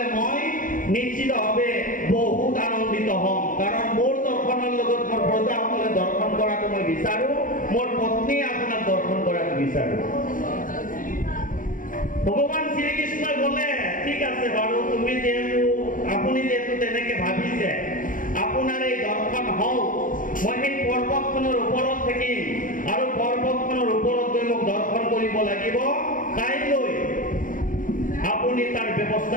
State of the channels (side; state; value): right; late; 0.39 ms